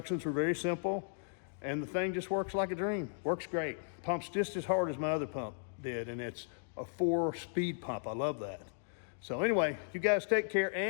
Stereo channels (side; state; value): right; silent; digital silence